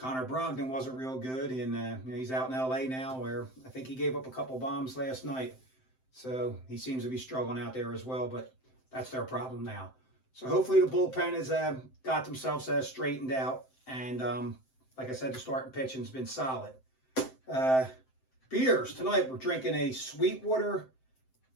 Brogdon wasn't real good, and he's out in L.A. now, where I think he gave up a couple bombs last night. So he seems to be struggling out there as well, but that's their problem now. So hopefully the bullpen has got themselves straightened out, and like I said, the starting pitching's been solid. Beers tonight, we're drinking a Sweetwater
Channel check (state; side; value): late; right; 7.7 ms